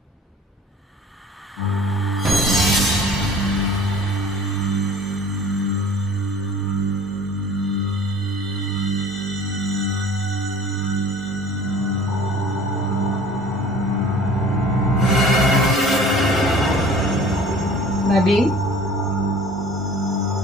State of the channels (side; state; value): both; normal; correlation 0.46